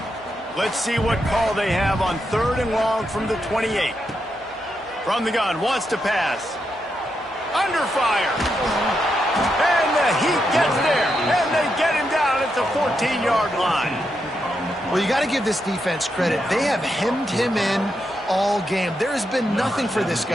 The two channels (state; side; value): normal; both; correlation 0.83